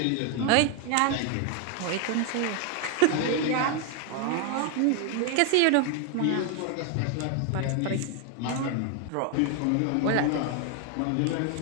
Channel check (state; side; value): different; both; correlation 0.01